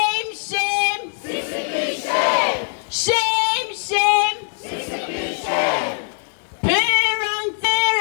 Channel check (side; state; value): right; silent; digital silence